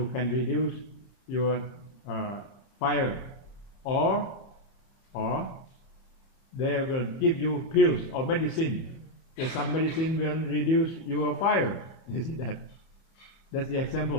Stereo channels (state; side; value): late; right; 30 ms